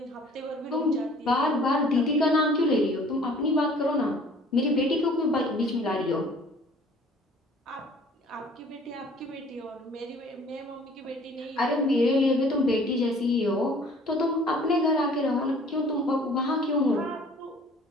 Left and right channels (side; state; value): both; normal; correlation 0.52